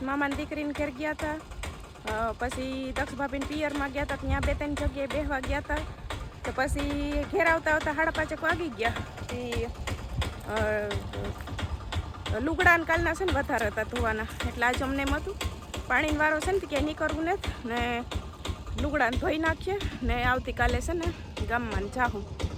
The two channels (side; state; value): both; identical; correlation 1.00